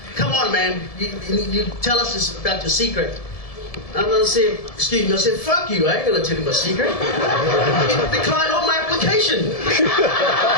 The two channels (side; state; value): right; late; 1.7 ms